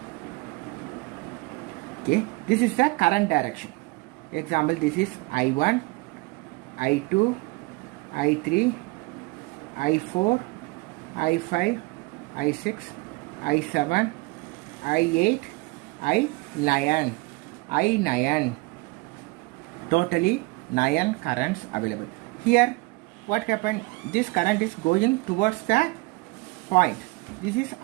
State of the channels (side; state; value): left; quieter; 24.6 dB